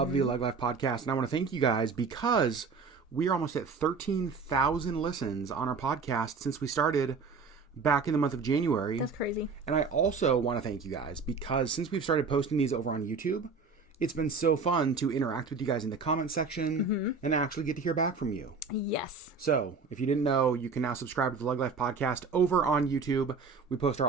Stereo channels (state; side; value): quieter; left; 4.8 dB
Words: the LeggLife Podcast. And I want to thank you guys because we are almost at 13,000 listens on our podcast since we started back in the month of January. That's crazy. And I also want to thank you guys because since we've started posting these over on YouTube, it's been so fun to interact with you guys in the comment section and actually get to hear back from you. Yes. So, if you didn't know, you can now subscribe to the LeggLife Podcast over on YouTube. We post